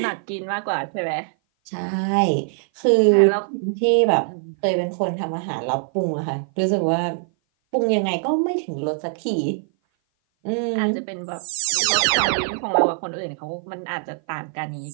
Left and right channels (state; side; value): silent; left; 57 dB below the other